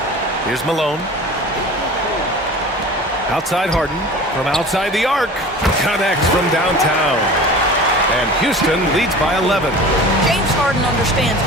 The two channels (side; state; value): both; normal; correlation 0.39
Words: Here's Malone. Outside Harden. From outside the arc. Connects from downtown. And Houston leads by 11. James Harden understands